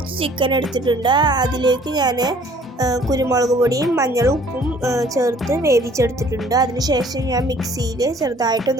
ചിക്കൻ എടുത്തിട്ടുണ്ട്. അതിലേക്ക് ഞാൻ കുരുമുളക് പൊടിയും മഞ്ഞളും ഉപ്പും ചേർത്ത് വേവിച്ചെടുത്തിട്ടുണ്ട്. അതിനുശേഷം ഞാൻ മിക്സിയിൽ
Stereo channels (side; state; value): both; normal; correlation 0.56